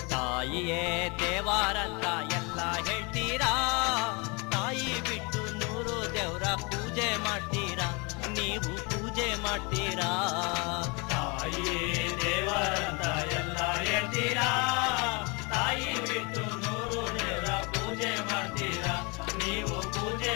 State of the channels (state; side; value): quieter; right; 29.9 dB